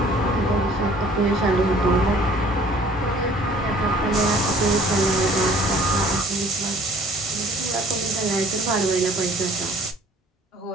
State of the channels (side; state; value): both; normal; correlation 0.54